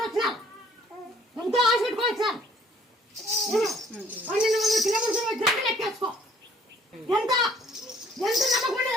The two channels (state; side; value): normal; both; correlation 0.59